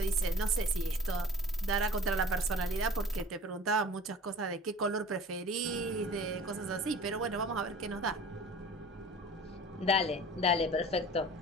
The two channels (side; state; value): both; normal; correlation 0.43